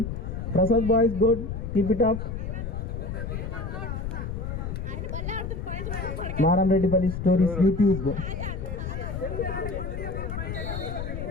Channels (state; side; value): noise; left; rumble, 5 dB below the sound